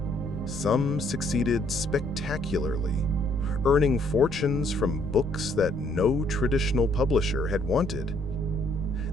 Some succeeded spectacularly, earning fortunes from books that no traditional publisher had wanted.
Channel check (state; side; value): noise; left; rumble, 13 dB below the sound